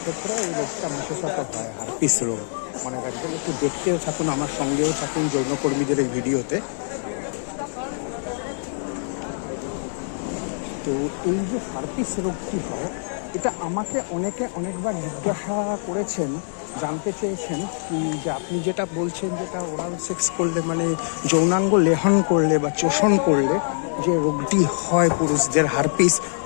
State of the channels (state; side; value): silent; right; digital silence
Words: ক্ষেত্রে এই রোগটা বিশেষত হয় হারপিস রোগ। মনে রাখবেন, একটু দেখতেও থাকুন, আমার সঙ্গেও থাকুন যৌনকর্মীদের এই ভিডিওতে। তো এই যে হারপিস রোগটি হয়, এটা আমাকে অনেকে অনেকবার জিজ্ঞাসা করেছেন, জানতে চেয়েছেন কি যে আপনি যেটা বলছেন, যেটা ওরাল সেক্স করলে মানে যৌনাঙ্গ লেহন করলে বা চোষণ করলে যে রোগটি হয় পুরুষদের হারপিস,